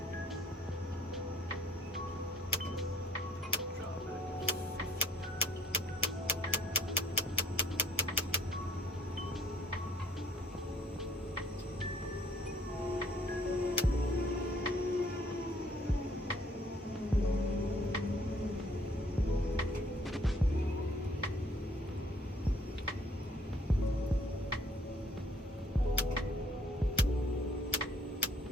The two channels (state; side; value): normal; both; correlation 0.59